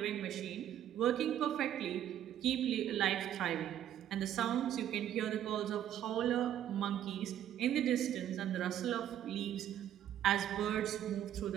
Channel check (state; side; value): quieter; left; 11.0 dB